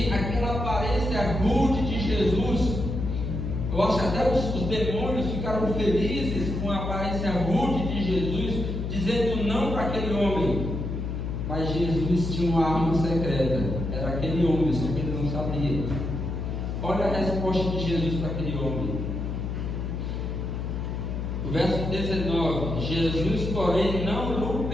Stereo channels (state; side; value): noise; left; hum, 3 dB below the sound